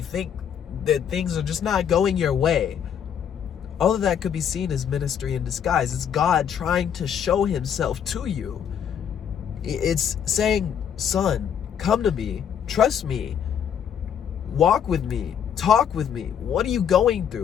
think that things are just not going your way, all of that could be seen as ministry in disguise. It's God trying to show himself to you. It's saying, son, come to me, trust me, walk with me, talk with me. What are you going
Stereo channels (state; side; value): quieter; right; 8.5 dB